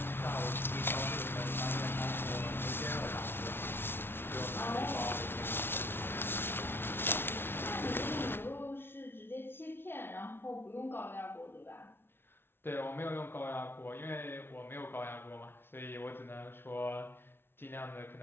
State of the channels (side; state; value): right; late; 0.11 ms